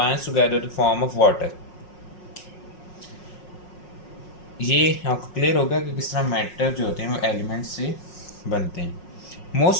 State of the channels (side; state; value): right; late; 5.5 ms